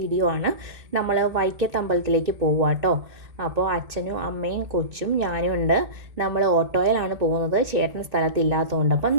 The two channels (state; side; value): late; left; 2.1 ms